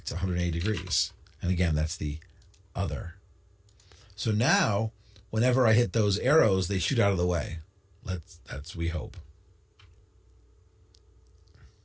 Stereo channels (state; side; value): identical; both; correlation 1.00